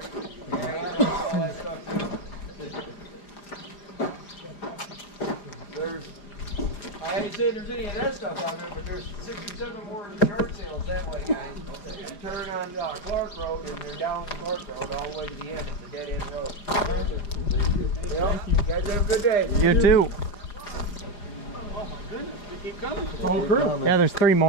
I ain't saying there's any of that stuff down there, but there's 67 more yard sales that way, guys. You turn on Clark Road and you're down Clark Road all the way to the end. It's a dead end road. Thank you. Thank you. You guys have a good day. You too. Oh my goodness, we keep coming. Whole crew. Yeah, there's 3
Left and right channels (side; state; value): right; late; 4.9 ms